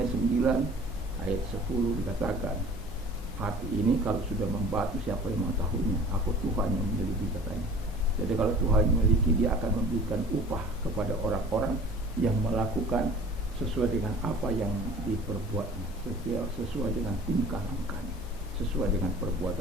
9 ayat 10 dikatakan, hati ini kalau sudah membatu siapa yang mengetahuinya? Aku Tuhan yang memiliki, katanya. Jadi kalau Tuhan memiliki, dia akan memberikan upah kepada orang-orang yang melakukan sesuai dengan apa yang diperbuatnya, sesuai dengan tingkah langkahnya, sesuai dengan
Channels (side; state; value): both; normal; correlation 0.46